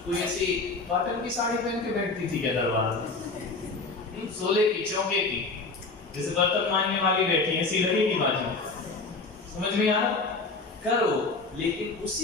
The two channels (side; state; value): right; quieter; 3.7 dB